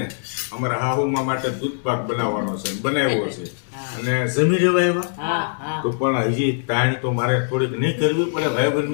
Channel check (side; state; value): right; silent; digital silence